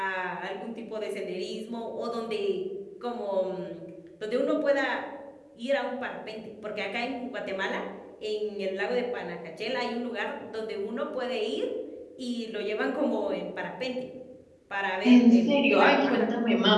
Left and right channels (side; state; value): both; identical; correlation 1.00